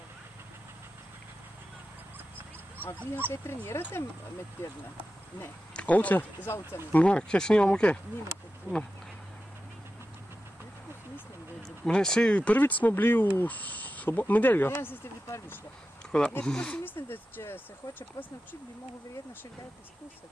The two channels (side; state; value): both; normal; correlation 0.92